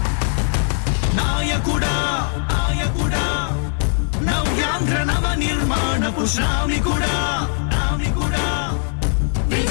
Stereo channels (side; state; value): right; silent; digital silence